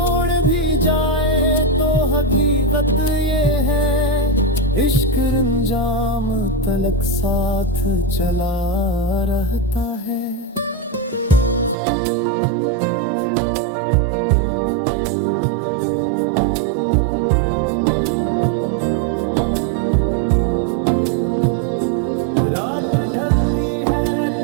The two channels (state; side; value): drops out; left; at 11.8 s